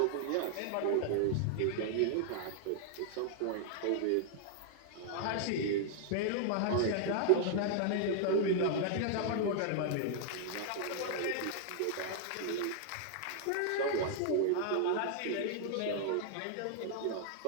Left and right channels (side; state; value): both; different; correlation -0.01